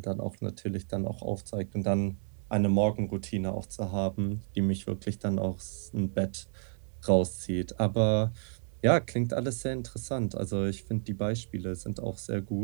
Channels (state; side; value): silent; left; digital silence